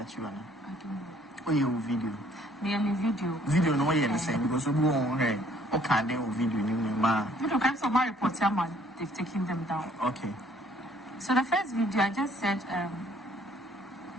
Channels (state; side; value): normal; both; correlation 0.61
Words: you? I don't know. Oh, you video. Me and video. Video no way the same because we go on here. Okay, they will video in my. Video kinds of my reports, they've taken them down. Okay. So the first video I just said,